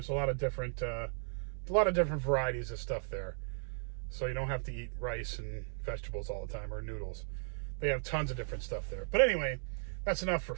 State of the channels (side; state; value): left; silent; 54 dB below the other